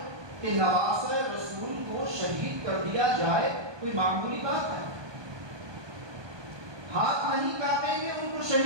کہ نواسہ رسول کو شہید کر دیا جائے کوئی معمولی بات ہے؟ ہاتھ نہیں کاٹیں گے ان کو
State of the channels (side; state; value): left; late; 1.2 ms